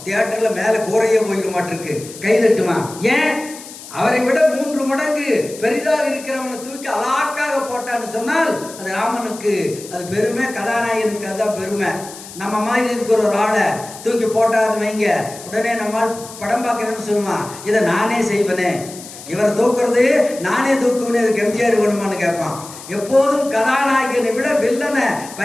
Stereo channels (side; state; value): left; noise; hiss, 15 dB below the sound